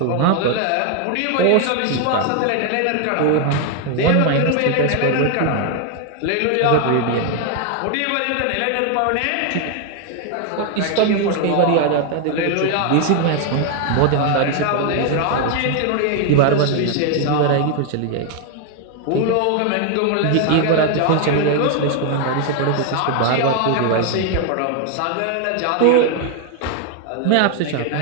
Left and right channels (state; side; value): different; both; correlation 0.01